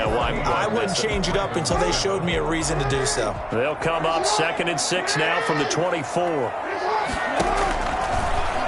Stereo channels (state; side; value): identical; both; correlation 1.00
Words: why I wouldn't change it up until they showed me a reason to do so. They'll come up 2nd and 6 now from the 24.